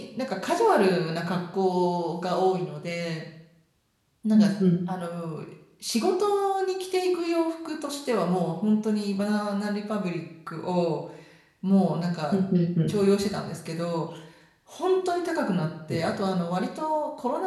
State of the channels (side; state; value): both; identical; correlation 1.00